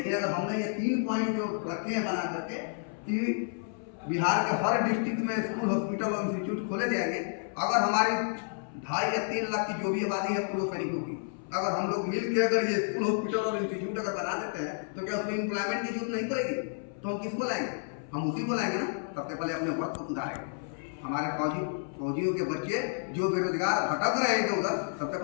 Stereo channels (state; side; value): silent; right; 57 dB below the other